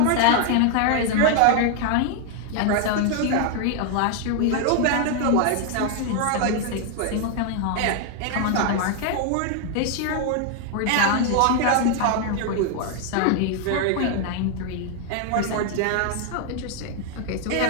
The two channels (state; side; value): different; both; correlation 0.00